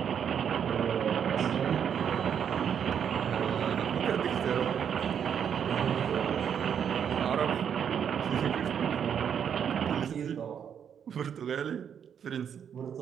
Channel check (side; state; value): left; quieter; 8.1 dB